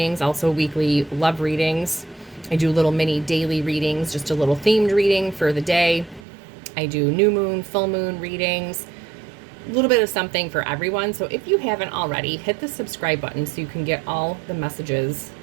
also weekly love readings. I do little mini daily readings, just a little themed reading for the day. I do new moon, full moon readings, a little bit of something for everyone. So if you haven't already, hit the subscribe button so you can get all the messages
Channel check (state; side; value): drops out; left; at 6.2 s